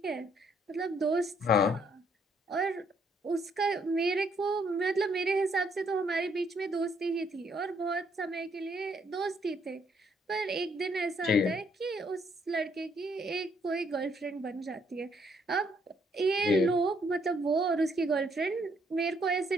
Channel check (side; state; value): both; normal; correlation 0.70